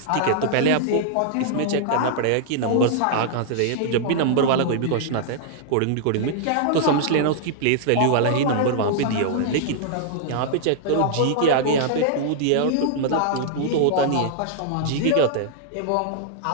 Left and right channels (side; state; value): both; different; correlation -0.01